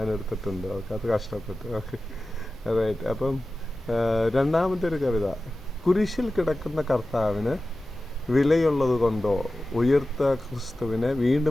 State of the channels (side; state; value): both; normal; correlation 0.95